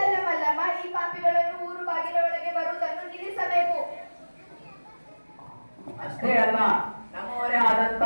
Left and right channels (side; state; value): both; inverted; correlation -1.00